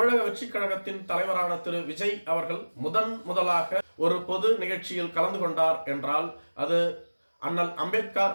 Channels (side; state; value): both; inverted; correlation -1.00